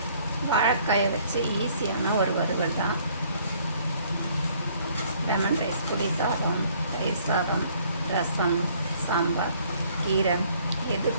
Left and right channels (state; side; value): inverted; both; correlation -0.61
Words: வாழைக்காயை வச்சு ஈஸியான ஒரு வறுவல் தான். லெமன் ரைஸ், புளி சாதம், தயிர் சாதம், ரசம், சாம்பார், கீரை எது